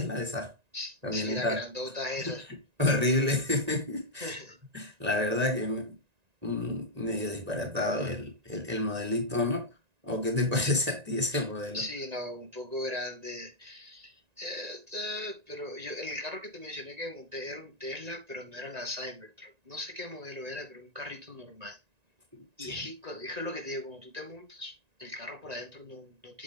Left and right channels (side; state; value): left; late; 1.9 ms